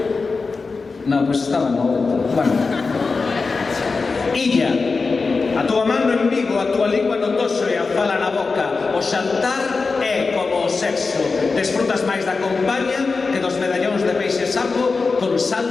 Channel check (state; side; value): quieter; right; 4.3 dB